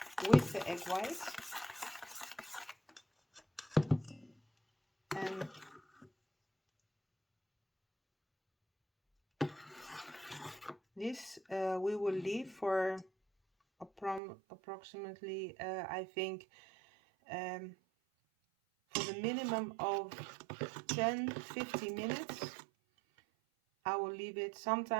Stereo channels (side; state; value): left; drops out; at 14.2 s